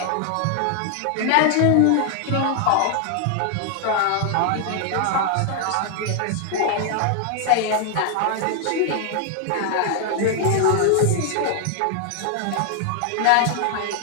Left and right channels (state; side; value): different; both; correlation 0.00